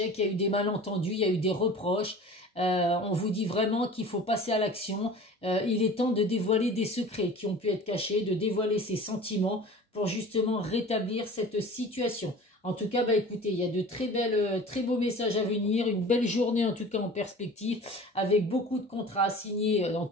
il y a eu des malentendus, il y a eu des reproches. On vous dit vraiment qu'il faut passer à l'action. Il est temps de dévoiler des secrets qui ont pu être cachés, de dévoiler ses sentiments pour justement rétablir cette situation. En tout cas, bah écoutez, il y a de très beaux messages à venir, une belle journée en tout cas en perspective, avec beaucoup de contrats à signer dans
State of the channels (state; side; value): normal; both; correlation 0.41